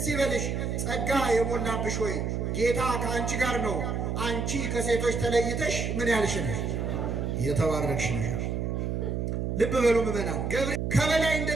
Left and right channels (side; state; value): right; noise; hum, 1 dB below the sound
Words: ይበልሽ ጸጋ የሞላብሽ ሆይ ጌታ ከአንቺ ጋር ነው። አንቺ ከሴቶች ተለይተሽ ምን ያልሽ ነሽ? የተባረክሽ ነሽ። ልብ በሉ ምዕመናን፣ ገብርኤል ከበላይ